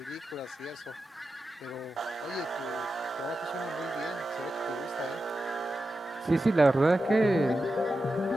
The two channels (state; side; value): normal; both; correlation 0.91